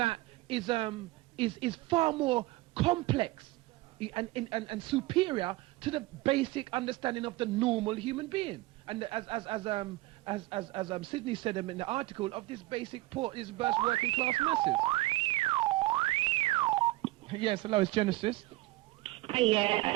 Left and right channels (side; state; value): left; quieter; 19.5 dB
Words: is far more complex and superior to the basic understanding of the normal human being. And as Sydney said in the article, of this basic this burst working class masses. Yes, hello, it's Genesis. Hi,